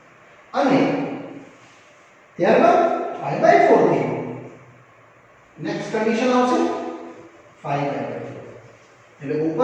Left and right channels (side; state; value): both; identical; correlation 1.00